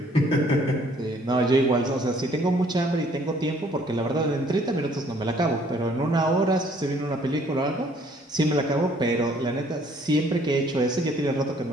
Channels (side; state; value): both; normal; correlation 0.61